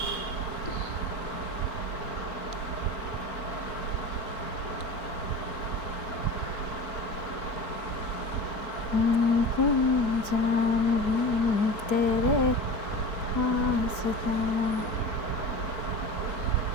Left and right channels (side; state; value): right; late; 4.4 ms